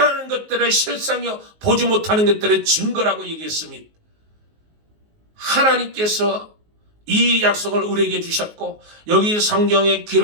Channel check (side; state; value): left; late; 19 ms